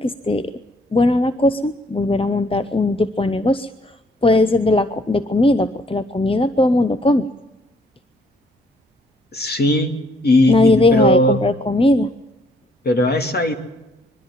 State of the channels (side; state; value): both; normal; correlation 0.65